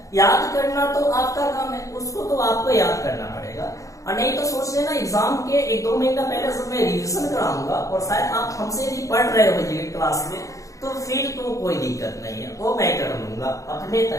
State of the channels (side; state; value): right; late; 0.16 ms